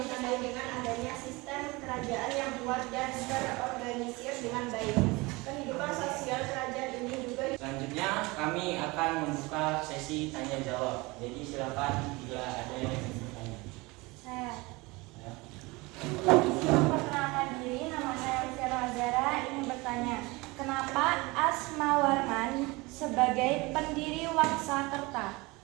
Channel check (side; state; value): left; quieter; 23.8 dB